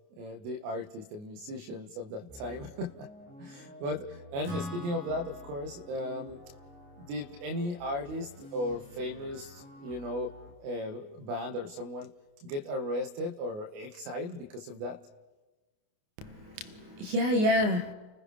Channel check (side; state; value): left; late; 29 ms